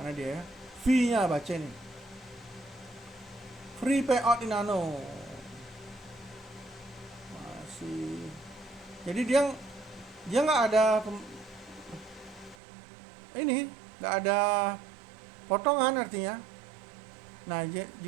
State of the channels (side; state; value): left; drops out; at 12.6 s